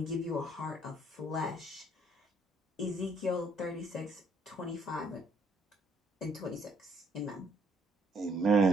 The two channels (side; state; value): both; normal; correlation 0.67